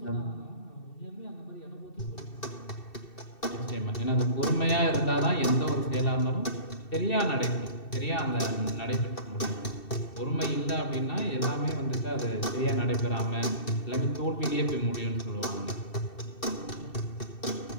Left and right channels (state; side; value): late; right; 2.7 ms